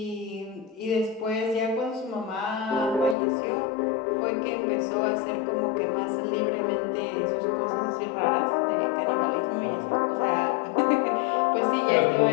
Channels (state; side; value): drops out; right; at 3.2 s